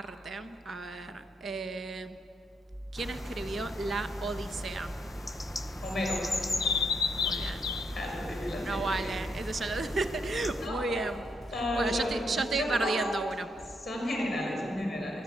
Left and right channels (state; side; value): normal; both; correlation 0.78